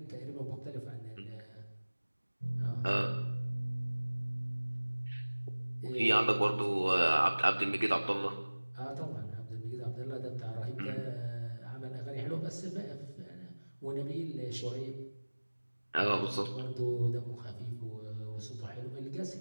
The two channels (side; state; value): both; inverted; correlation -1.00